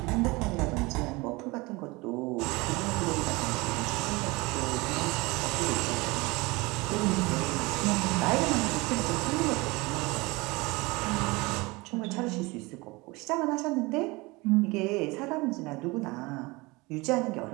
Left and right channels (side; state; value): left; quieter; 23.8 dB